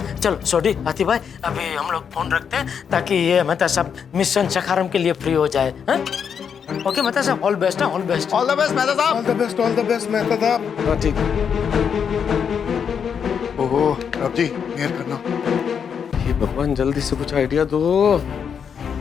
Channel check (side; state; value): right; quieter; 7.2 dB